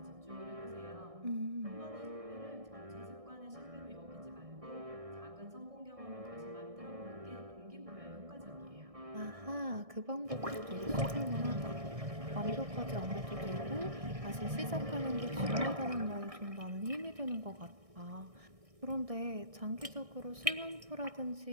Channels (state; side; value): late; left; 1.6 ms